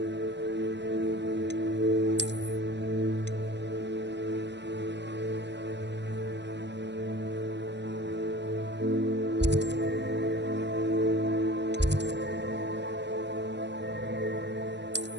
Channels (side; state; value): left; late; 0.51 ms